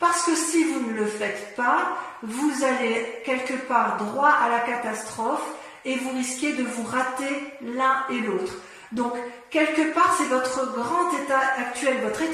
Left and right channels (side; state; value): both; identical; correlation 1.00